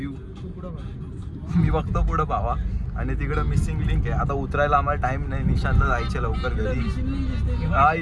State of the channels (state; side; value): identical; both; correlation 1.00